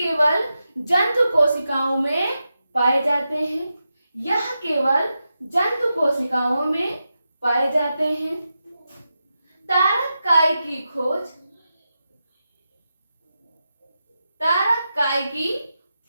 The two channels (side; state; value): both; inverted; correlation -0.89